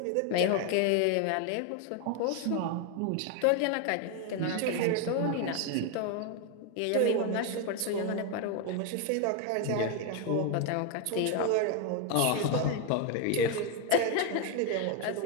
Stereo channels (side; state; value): both; different; correlation 0.01